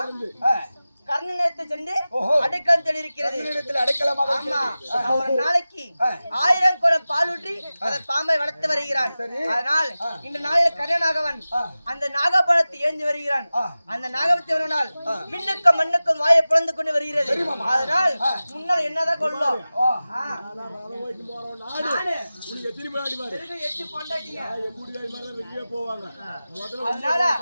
கர்ணனத்தை சென்று அடைக்கலம் தெரிவிக்கிறது. ஆமா ஒரு நாளைக்கு 1000 குடம் பால் ஊற்றி அந்த பாம்பை வளர்த்து வருகிறான். அதனால் இந்த நாளில் கர்ணனாகவன் அந்த நாகபாலத்தை ஏந்தி வருகிறான். அந்த நாகபத்தை வருவனால் விண்ணுக்கும் மண்ணுக்கும் வாயை பிளந்து கொண்டு வருகிறது. அதனால் முன்னால் என்னதான் கொள்ளும் அதனால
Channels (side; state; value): both; inverted; correlation -0.96